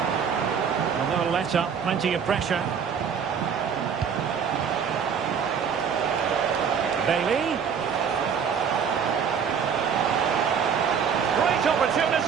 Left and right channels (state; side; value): quieter; left; 7.0 dB